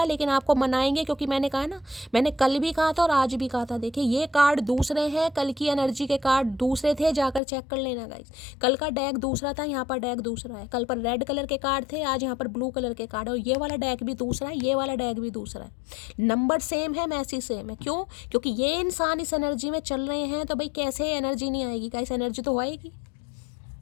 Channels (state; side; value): drops out; right; at 7.4 s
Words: लेकिन आपको मनाएंगे, क्योंकि मैंने कहा ना, मैंने कल भी कहा था और आज भी कहा था, देखिए ये कार्ड दूसरे हैं, कल की एनर्जी के कार्ड दूसरे थे, जाकर चेक कर लेना गाइस। कल का डेक दूसरा था, यहाँ पर डेक दूसरा है। कल पर रेड कलर के कार्ड थे, आज यहाँ पर ब्लू कलर के कार्ड है, और ये वाला डेक भी दूसरा है, ये वाला डेक भी दूसरा है। नंबर सेम है, मैसेज सेम है। क्यों? क्योंकि ये इंसान इस एनर्जी में चल रहे हैं, तो भाई कैसे एनर्जी नहीं आएगी गाइस, एनर्जी तो आएगी,